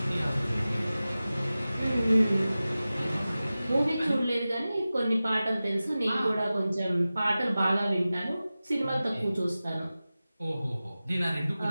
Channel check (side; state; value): both; inverted; correlation -0.96